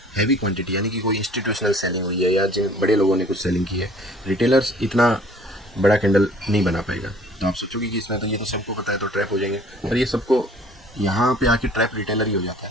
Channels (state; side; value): normal; both; correlation 0.53